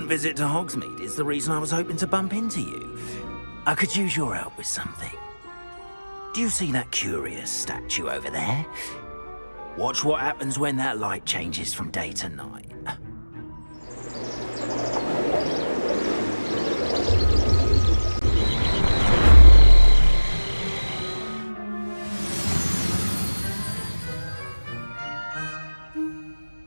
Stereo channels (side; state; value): both; inverted; correlation -1.00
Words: visit to Hogsmeade is the reason I was hoping to bump into you. I could use your help with something. Do you see that curious statue over there? Watch what happens when that light changes from day to night.